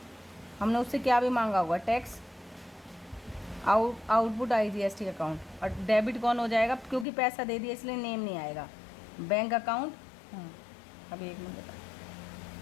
हमने उससे क्या भी मांगा होगा? टैक्स। Output IGST account. और डेबिट कौन हो जाएगा? क्योंकि पैसा दे दिया इसलिए नेम नहीं आएगा। Bank account. अभी एक मिनट बता,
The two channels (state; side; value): drops out; right; at 7.1 s